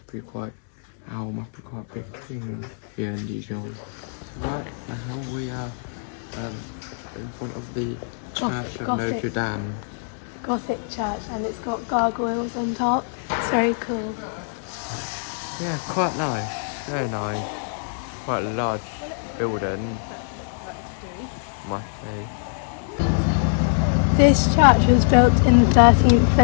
be quite a big thing here in Dijon. Right now we are in front of the Church of Notre Dame. Gothic church, and it's got gargoyles on top. It's very cool. Yeah, quite nice, very nice. Quite a large building, must say. This church was built in the 13th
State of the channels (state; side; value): silent; right; digital silence